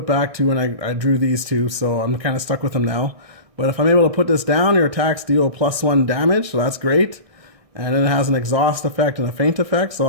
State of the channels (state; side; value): late; left; 1.6 ms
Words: back 2, and I drew these 2. So I'm kind of stuck with them now. But if I'm able to put this down, your attacks deal +1 damage, so that's great. And then it has an exhaust effect and a feint effect, so